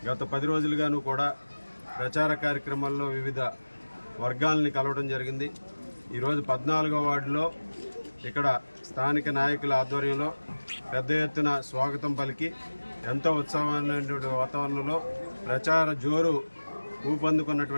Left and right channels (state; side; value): inverted; both; correlation -1.00